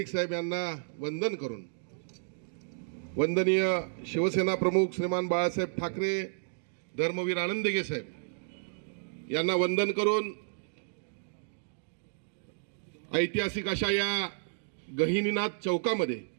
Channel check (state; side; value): silent; left; digital silence